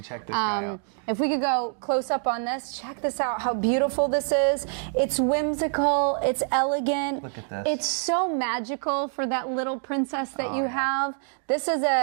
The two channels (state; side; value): silent; left; 61 dB below the other